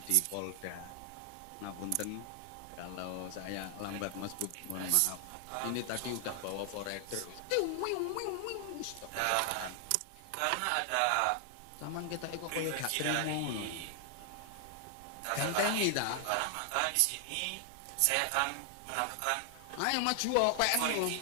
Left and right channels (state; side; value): different; both; correlation 0.00